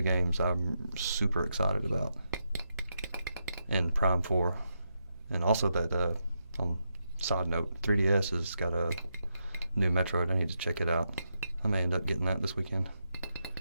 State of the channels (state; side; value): inverted; both; correlation -0.84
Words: games I'm super excited about. And Prime 4. And also that, on side note, 3DS has got a new Metroid. I need to check it out. I may end up getting that this weekend.